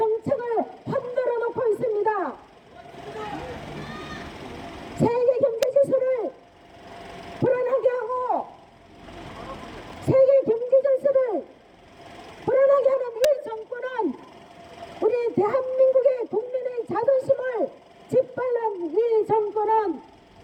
흔들어 놓고 있습니다. 세계 경제 지수를 불안하게 하고 세계 경제 질서를 불안하게 하는 이 정권은 우리 대한민국의 국민의 자존심을 짓밟는 이 정권은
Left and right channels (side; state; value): both; identical; correlation 1.00